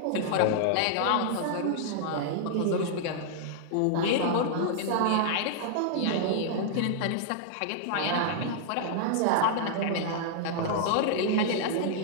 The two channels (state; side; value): different; both; correlation -0.01